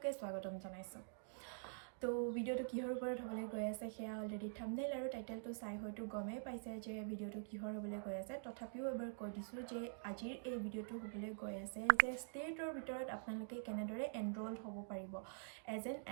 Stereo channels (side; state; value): left; silent; digital silence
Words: স্বাগতম জনাইছো তো ভিডিঅ'টো কিহৰ ওপৰত হ'বলৈ গৈ আছে সেয়া অলৰেডি থাম্বনেইল আৰু টাইটেলটো চাই হয়তো গমেই পাইছে যে ভিডিঅ'টো কিহৰ হ'বলৈ গৈ আছে তথাপিও এবাৰ কৈ দিছোঁ যে আজিৰ এই ভিডিঅ'টো হ'বলৈ গৈ আছে যে ষ্টেটৰ ভিতৰত আপোনালোকে কেনেদৰে এনৰোল হ'ব পাৰিব এজ এন